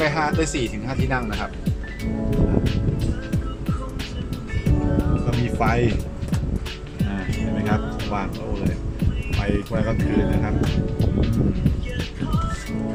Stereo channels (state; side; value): identical; both; correlation 1.00